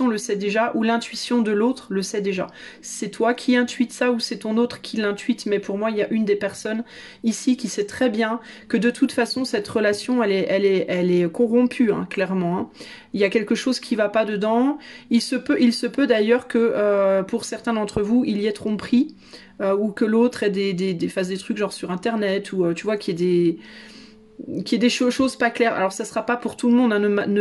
le sait déjà, ou l'intuition de l'autre le sait déjà. C'est toi qui intuites ça, ou c'est ton autre qui l'intuite, mais pour moi, il y a une des personnes ici qui sait très bien que de toute façon, cette relation, elle est corrompue, hein, clairement. Hein. Il y a quelque chose qui va pas dedans. Il se peut d'ailleurs que pour certains d'entre vous, il y ait tromperie, ou que l'autre fasse des trucs genre sur Internet, ou tu vois, qu'il y ait des choses pas claires. Alors ça sera pas pour tout le monde, hein.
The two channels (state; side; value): identical; both; correlation 1.00